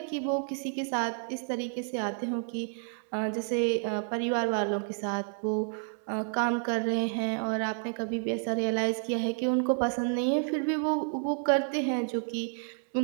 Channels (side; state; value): left; silent; 58 dB below the other